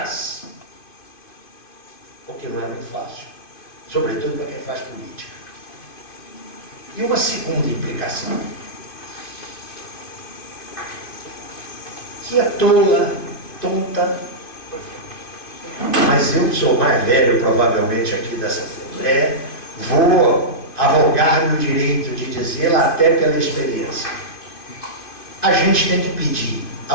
Porque não é muito fácil. Sobretudo para quem faz política. E uma segunda implicação, que é tola, tonta, mas eu, que sou o mais velho provavelmente aqui dessa Assembleia, vou arrogar-me o direito de dizê-la até pela experiência. A gente tem que pedir a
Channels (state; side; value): late; right; 2.5 ms